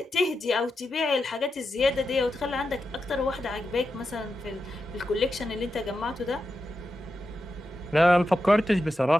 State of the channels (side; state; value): both; normal; correlation 0.89